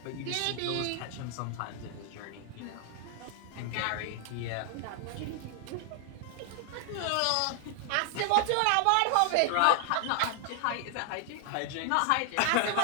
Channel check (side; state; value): both; different; correlation 0.00